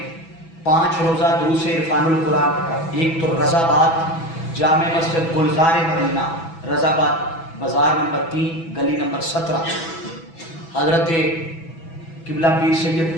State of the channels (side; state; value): right; late; 6.1 ms